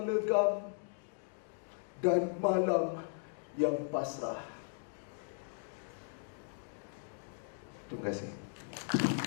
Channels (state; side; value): silent; right; digital silence